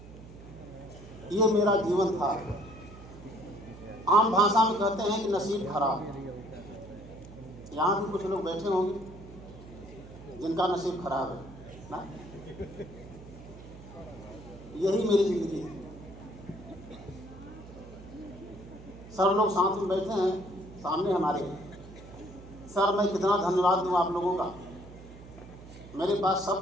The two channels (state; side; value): noise; right; hum, 17 dB below the sound